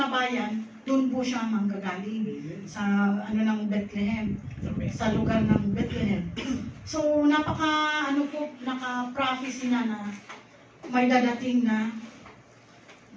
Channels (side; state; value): both; identical; correlation 1.00